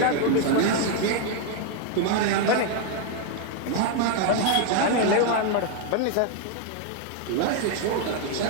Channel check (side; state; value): both; different; correlation 0.01